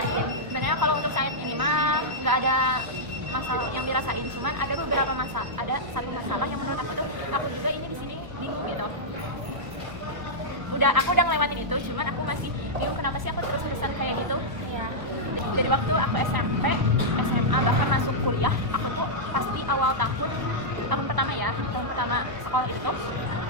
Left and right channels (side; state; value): left; late; 1.0 ms